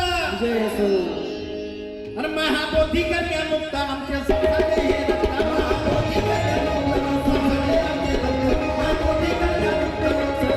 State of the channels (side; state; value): both; identical; correlation 1.00